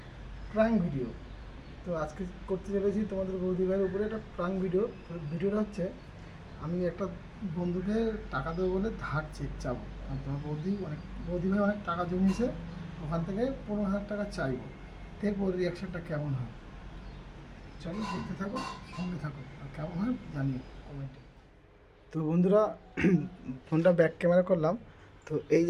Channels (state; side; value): identical; both; correlation 1.00